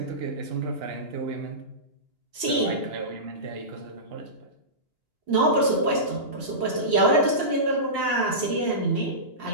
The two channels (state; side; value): late; left; 2.8 ms